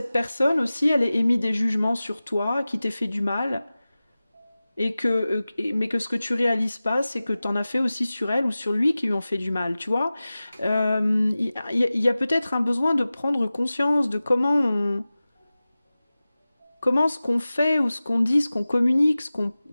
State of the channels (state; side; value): inverted; both; correlation -0.97